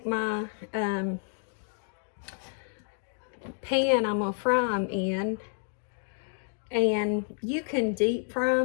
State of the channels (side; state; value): right; silent; 58 dB below the other